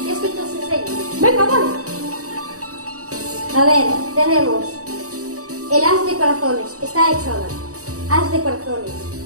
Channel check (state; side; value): late; left; 0.66 ms